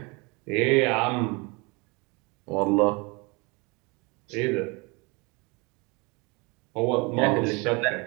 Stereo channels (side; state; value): left; quieter; 28.3 dB